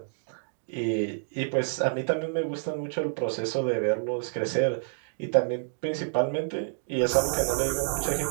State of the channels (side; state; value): left; silent; digital silence